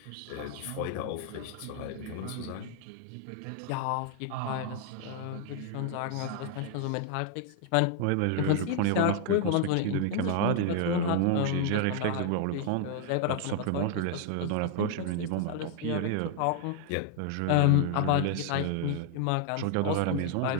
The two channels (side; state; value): both; different; correlation 0.00